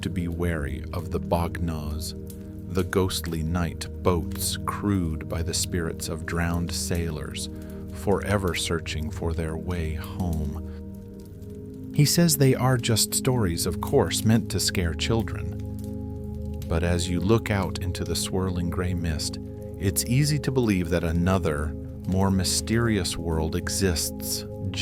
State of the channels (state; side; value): identical; both; correlation 1.00